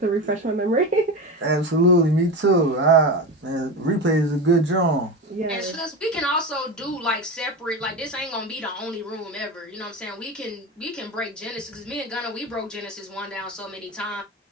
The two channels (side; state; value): both; normal; correlation 0.23